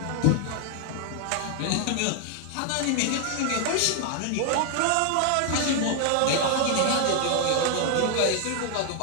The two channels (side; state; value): both; different; correlation 0.00